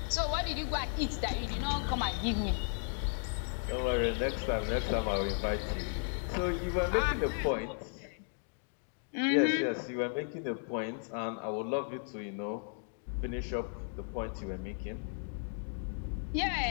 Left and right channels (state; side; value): silent; right; 55 dB below the other